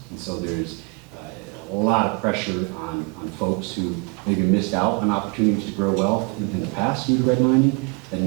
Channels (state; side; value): quieter; left; 29.8 dB